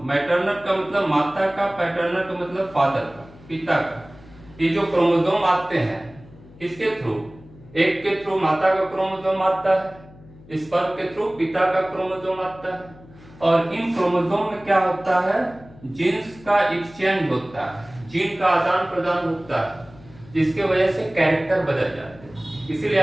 मैटरनल का मतलब माता का, पैटर्नल का मतलब फादर का, पिता का। ये जो क्रोमोसोम आते हैं किसके थ्रू? एक के थ्रू माता का क्रोमोसोम आता है, स्पर्म के थ्रू पिता का क्रोमोसोम आता है। और इन क्रोमोसोम में क्या होता है? जीन्स का एक्सचेंज होता है, जीन का आदान प्रदान होता है, जिसके वजह से कैरेक्टर बदल जाते हैं। इसीलिए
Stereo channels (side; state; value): left; noise; hum, 22 dB below the sound